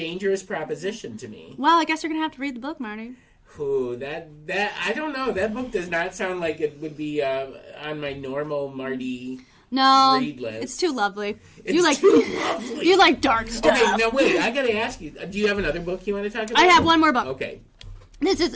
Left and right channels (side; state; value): both; identical; correlation 1.00